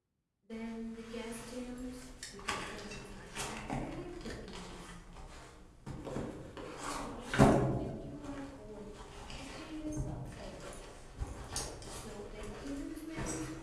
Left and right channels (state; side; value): identical; both; correlation 1.00